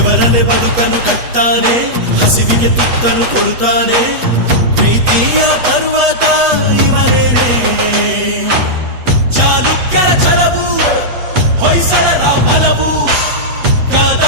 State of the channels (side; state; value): left; late; 8.2 ms